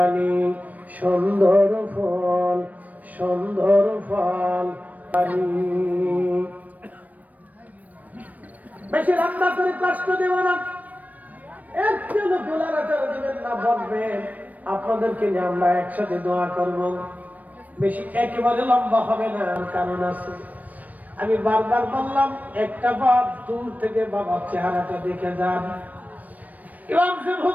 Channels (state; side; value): late; left; 0.075 ms